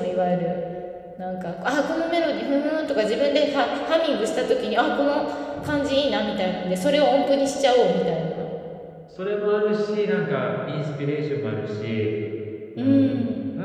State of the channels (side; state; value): both; identical; correlation 1.00